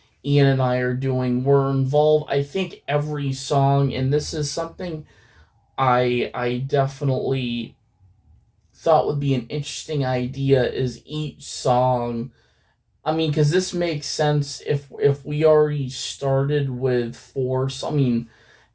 Ian and I are doing, we're involved, I think, every song. And this is something I definitely thought would be an interesting idea, is each song, I mean, because this makes sense if we already started with 4. So, I mean,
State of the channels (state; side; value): identical; both; correlation 1.00